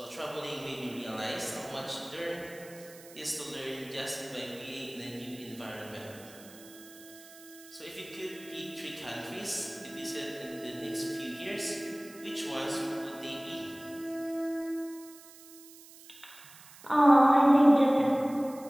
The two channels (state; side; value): noise; right; hiss, 20 dB below the sound